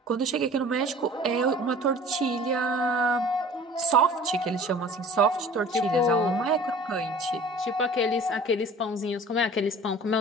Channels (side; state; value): both; normal; correlation 0.46